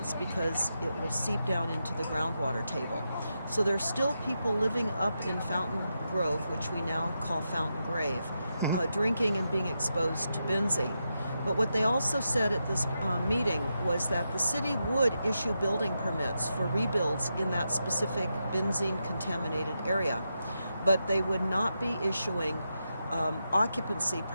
because it will seep down into the groundwater table. So there's still people living up in Fountain Grove, which we now call Fountain Grave, drinking and being exposed to benzene. But what they also said at this meeting was that the city would issue building permits for rebuilds in that specific benzene-contaminated area, but they would not be issuing occupancy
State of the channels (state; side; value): inverted; both; correlation -0.86